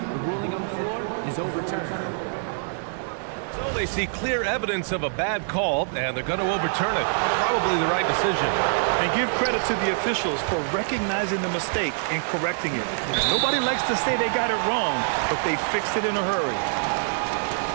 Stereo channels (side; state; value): left; silent; digital silence